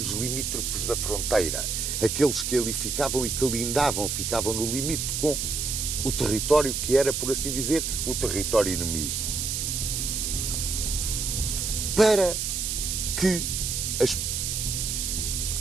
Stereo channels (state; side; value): noise; right; hiss, 1 dB below the sound